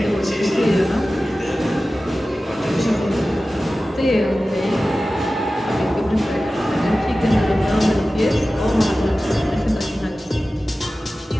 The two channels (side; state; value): both; normal; correlation 0.95